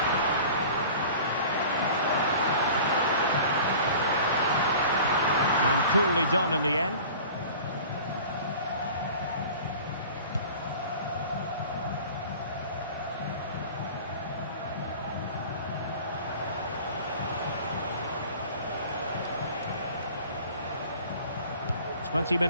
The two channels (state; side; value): inverted; both; correlation -0.42